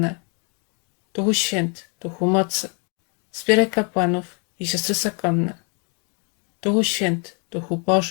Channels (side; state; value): right; quieter; 37.2 dB